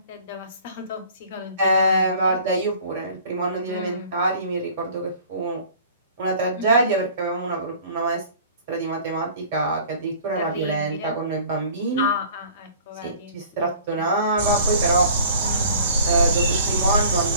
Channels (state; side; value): inverted; both; correlation -0.49